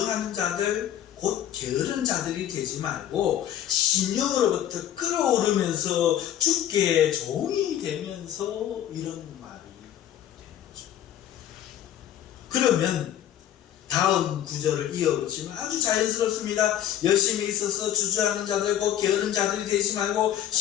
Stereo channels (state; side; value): quieter; right; 11.0 dB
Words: 자들 곧 게으른 자들이 되지 말고 심령으로부터 끓어오르면서 주께 종이 되면서 이런 말이 되는 거죠. 그러면 다음 구절을 이어보시면 아주 자연스럽습니다. 열심히 있어서 주저하는 자들 곧 게으른 자들이 되지 말고